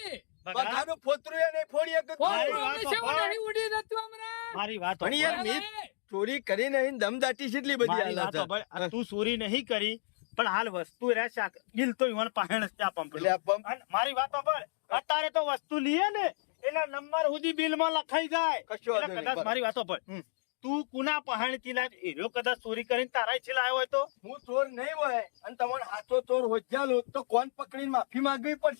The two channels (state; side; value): silent; right; digital silence